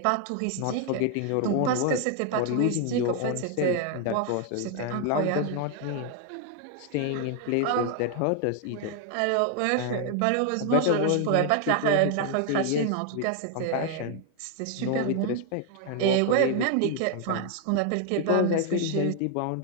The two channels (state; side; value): different; both; correlation 0.00